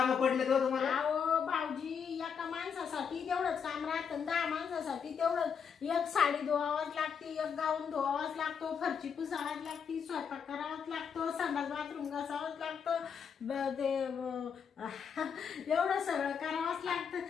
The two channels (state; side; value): quieter; right; 6.8 dB